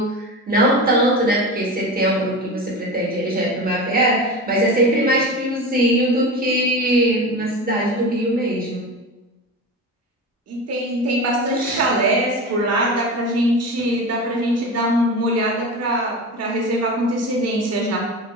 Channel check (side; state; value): both; normal; correlation 0.27